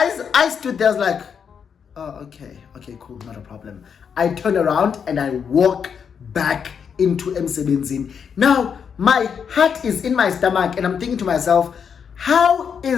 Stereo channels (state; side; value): quieter; right; 7.0 dB